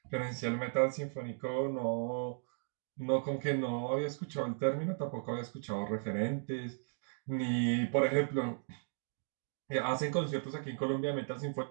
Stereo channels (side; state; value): left; silent; digital silence